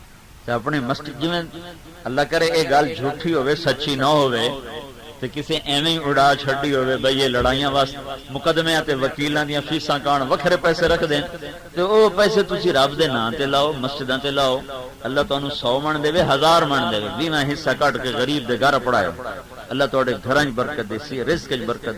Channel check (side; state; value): both; identical; correlation 1.00